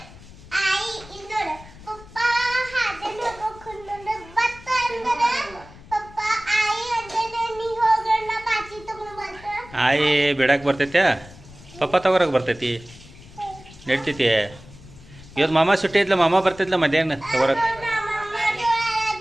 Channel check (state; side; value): noise; left; rumble, 20 dB below the sound